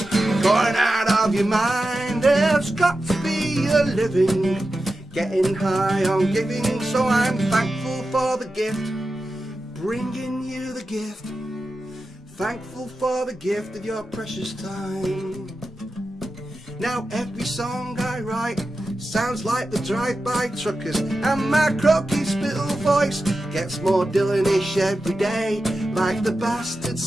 going out of your mind. There's got to be a living, getting high on giving. So I'm thankful for the gift, bringing you the gift. Thankful for the gift of your precious time. Now every song I write sounds like the drive-by truckers, and my croaky spittle voice gets more Dylanish every day. Like the bastard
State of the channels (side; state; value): both; normal; correlation 0.92